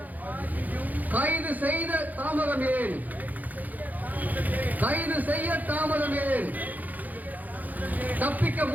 கைது செய்த தாமதம் ஏன்? கைது செய்ய தாமதம் ஏன்? தப்பிக்க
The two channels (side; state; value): left; late; 0.081 ms